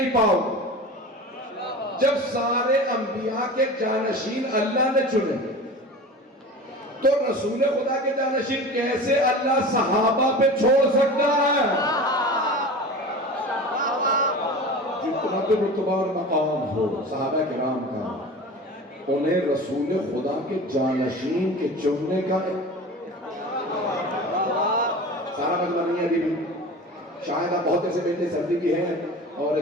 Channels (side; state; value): both; normal; correlation 0.35